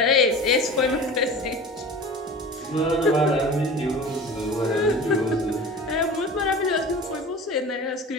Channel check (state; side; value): normal; both; correlation 0.37